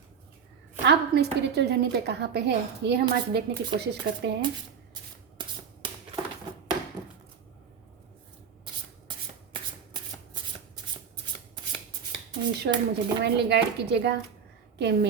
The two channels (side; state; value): left; quieter; 6.9 dB